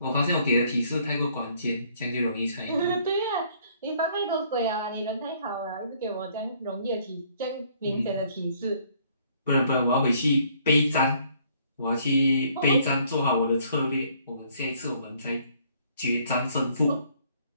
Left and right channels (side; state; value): both; inverted; correlation -0.63